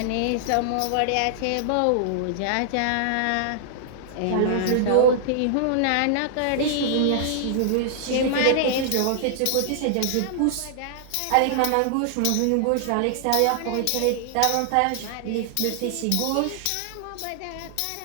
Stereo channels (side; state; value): both; different; correlation -0.01